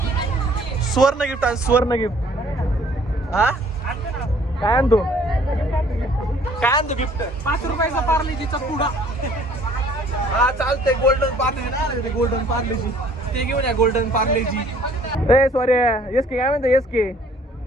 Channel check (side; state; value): both; normal; correlation 0.57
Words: सुवर्ण गिफ्ट आणि सुवर्ण गिफ्ट हा काय आणतो गिफ्ट 5 रुपयाचा पार्लेजीचा पुडा. हा चालतंय. गोल्डन पार्लेजी ना गोल्डन पार्लेजी ते घेऊन या. गोल्डन पार्लेजी ए सॉरी एस के काय म्हणतो एस के